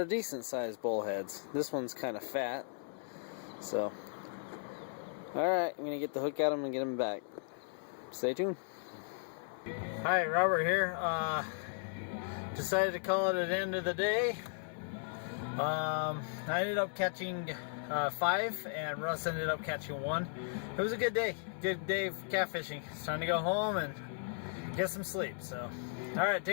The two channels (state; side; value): silent; right; 54 dB below the other